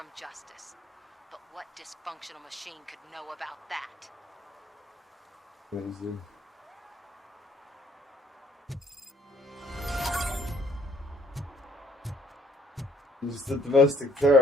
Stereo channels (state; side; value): normal; both; correlation 0.65